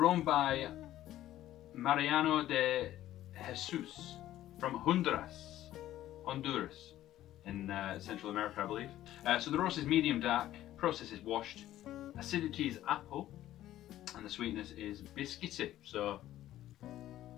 by Mariano de Jesus from Honduras in Central America, I believe. So the roast is medium dark, process is washed, acidity is apple, and the sweetness is biscuity, so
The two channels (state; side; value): quieter; right; 13.5 dB